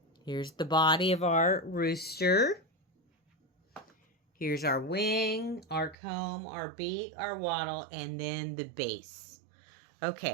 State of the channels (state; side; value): drops out; left; at 6.0 s